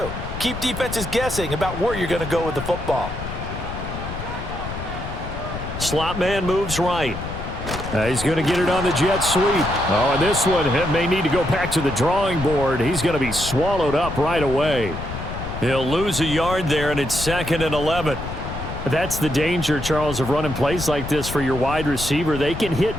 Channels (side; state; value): left; noise; rumble, 8 dB below the sound